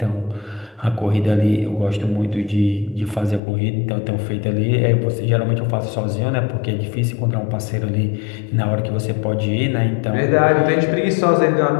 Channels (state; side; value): drops out; right; at 3.4 s